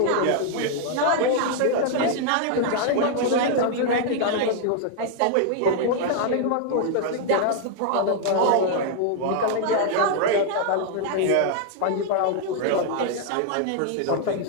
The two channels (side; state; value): both; different; correlation 0.00